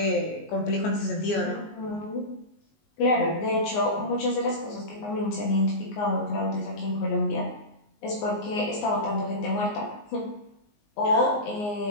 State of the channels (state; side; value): late; right; 19 ms